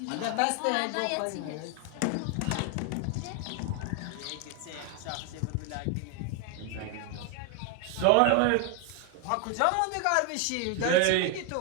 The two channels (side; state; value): both; different; correlation 0.01